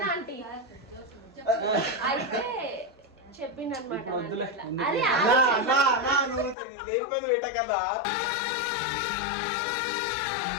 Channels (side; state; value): right; drops out; at 6.6 s